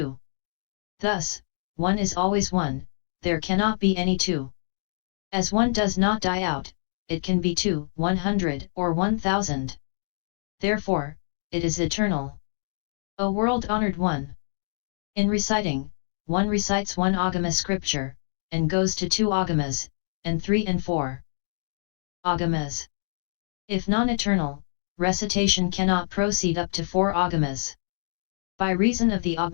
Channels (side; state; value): right; silent; digital silence